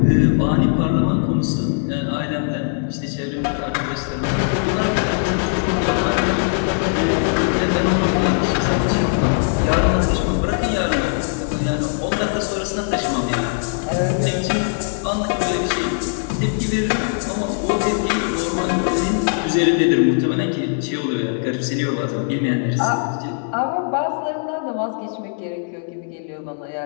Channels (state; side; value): silent; right; digital silence